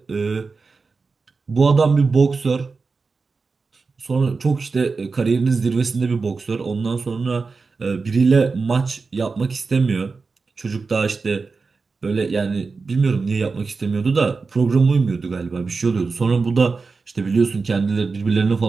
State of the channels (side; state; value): left; quieter; 4.4 dB